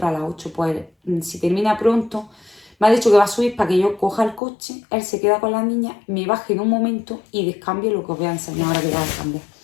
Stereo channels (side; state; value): right; drops out; at 4.4 s